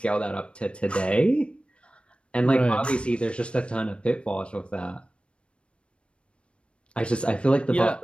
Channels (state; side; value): late; right; 0.059 ms